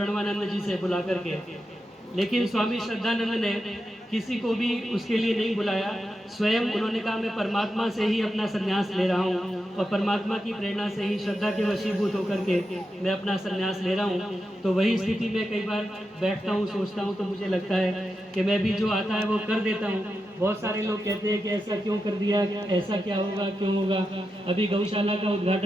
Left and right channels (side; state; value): both; normal; correlation 0.88